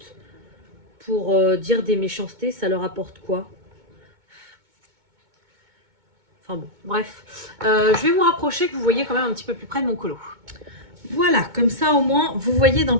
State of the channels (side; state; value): left; late; 2.2 ms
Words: pour dire des méchancetés. Ça leur apporte quoi? Enfin bon, bref. Je vais vous rapprocher que vous voyez quand même un petit peu plus près de mon colo. Voilà, comme ça au moins, vous voyez d'un